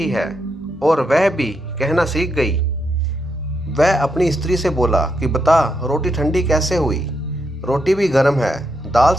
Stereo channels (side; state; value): both; normal; correlation 0.81